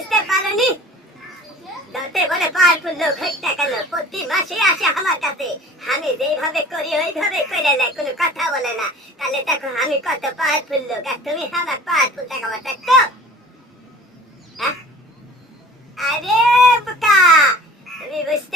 পারোনি? যত বলে পাওয়ারফুল লোক হোক না কেন প্রতি মাসে আসে আমার কাছে, আমি যেইভাবে করি ওইভাবে করে নেয়, কোনো কথা বলে না। তাহলে দেখো আমি কত পাওয়ারফুল লোক, আর তুমি আমার পাওয়ারফুল দেখাবার দেখছো? আরে বোকা, তুমি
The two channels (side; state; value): both; normal; correlation 0.45